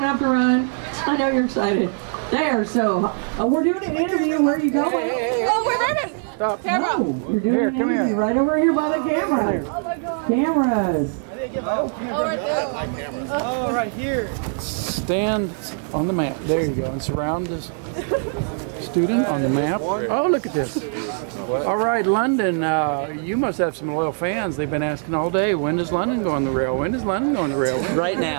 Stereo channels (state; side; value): silent; left; 56 dB below the other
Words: have to run. I know you're excited. There, so we're doing an interview. Where are you going? Oh, we're ready. Stop. No, you're doing an interview right over here by the camera. Cameras. Oh, right here. Stand on the map. There you go. And surround this student on the map. Oh, look at this. All right, London, you must have some loyal fans. They've been asking all day, when does London go on the rail? When does London go on the rail? Right